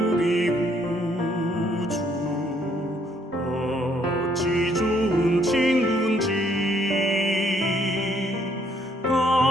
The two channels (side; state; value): both; normal; correlation 0.68